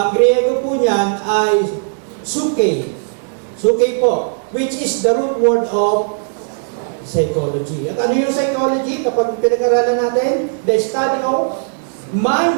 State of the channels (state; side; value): silent; left; digital silence